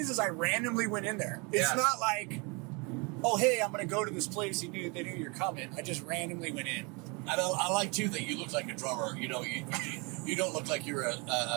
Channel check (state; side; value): quieter; left; 30.2 dB